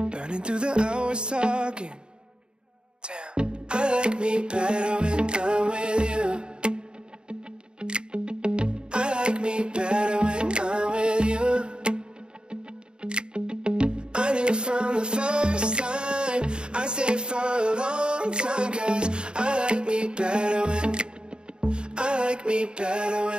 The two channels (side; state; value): left; late; 0.050 ms